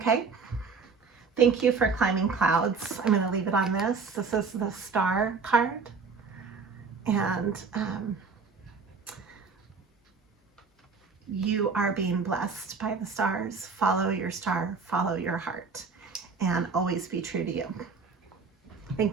Thank you for climbing clouds. I'm going to leave it on this. This is the star card. And you are being blessed by the stars. Follow your star, follow your heart, and always be true to you.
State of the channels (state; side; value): quieter; left; 4.9 dB